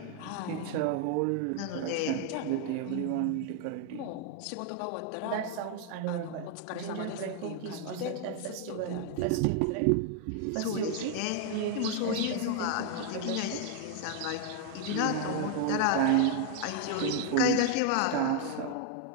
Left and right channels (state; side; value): different; both; correlation 0.00